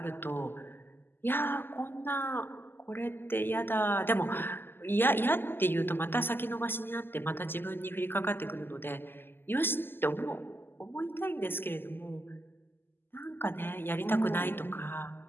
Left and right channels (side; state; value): right; late; 0.10 ms